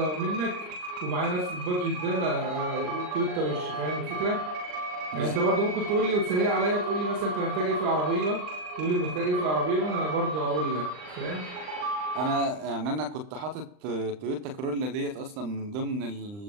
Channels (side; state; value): left; late; 39 ms